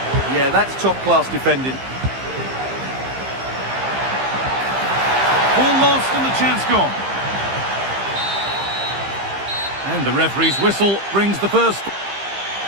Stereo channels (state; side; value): late; left; 15 ms